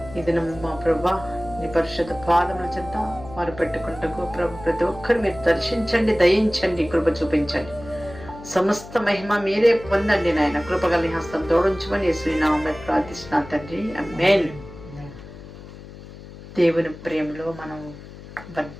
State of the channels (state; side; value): noise; left; hum, 16 dB below the sound